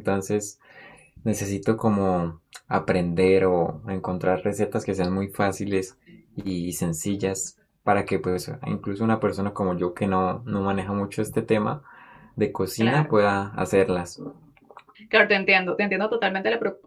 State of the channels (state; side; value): identical; both; correlation 1.00